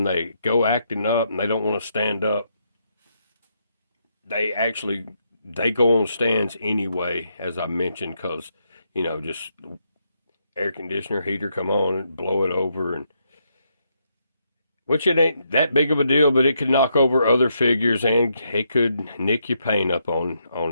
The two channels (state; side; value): inverted; both; correlation -0.78